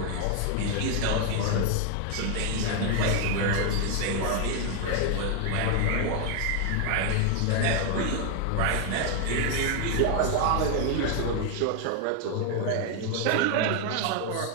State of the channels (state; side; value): different; both; correlation 0.00